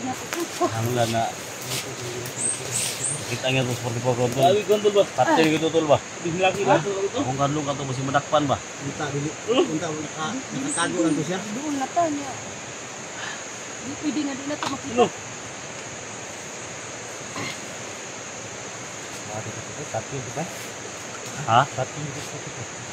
Ang lang na kita nga to sa 44 kontol. Gawi gondol ba? Patay gitu tol ba? Bihlaki na to. Kung kanlong ka to masih madakpan ba? Punta, dili. Punta, nakatago lang to siya. Doon na ta niya. Di pwede na di na to makita. Ha?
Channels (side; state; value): both; identical; correlation 1.00